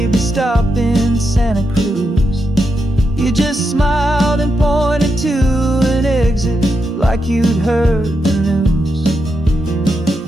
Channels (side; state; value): both; normal; correlation 0.84